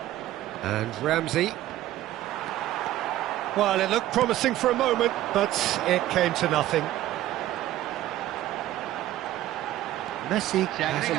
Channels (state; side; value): quieter; left; 14.2 dB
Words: And Ramsey. Well, it looked promising for a moment, but it came to nothing. Messi has a